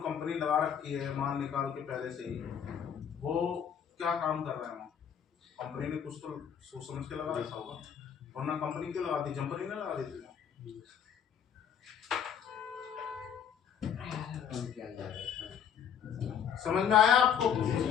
कंपनी लगा रखी है माल निकाल के पहले से ही, वो क्या काम कर रहा है वहाँ? कंपनी ने कुछ तो सोच समझ के लगा रखा होगा। वरना कंपनी क्यों लगाती, जंपर ही ना लगा देती। समझ में आया आपको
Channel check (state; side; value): quieter; right; 8.2 dB